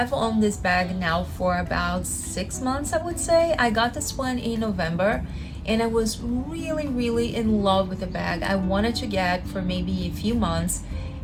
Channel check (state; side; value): identical; both; correlation 1.00